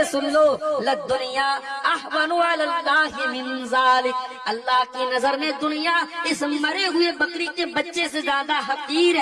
سن لو. لد دنیا احون علی اللہ من ذالک, اللہ کی نظر میں دنیا اس مرے ہوئے بکری کے بچے سے زیادہ حقیر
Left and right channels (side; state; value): both; identical; correlation 1.00